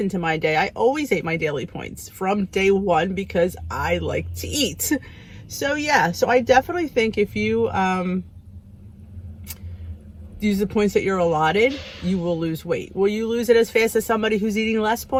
into my day. I always ate my daily points from day one because I like to eat. So yeah, so I definitely think if you use the points that you're allotted, you will lose weight. Will you lose it as fast as somebody who's eating less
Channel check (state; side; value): identical; both; correlation 1.00